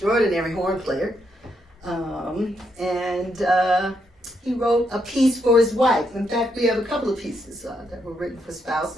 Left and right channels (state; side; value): normal; both; correlation 0.78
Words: horn player. He wrote a piece for his wife. In fact, we have a couple of pieces that were written for